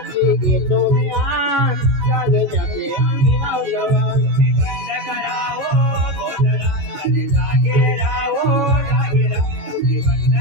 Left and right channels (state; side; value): late; left; 14 ms